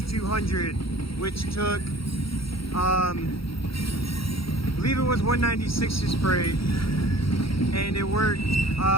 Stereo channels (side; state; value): right; late; 0.75 ms